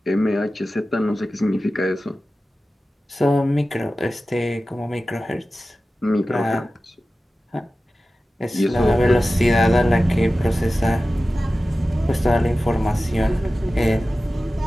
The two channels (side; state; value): both; normal; correlation 0.95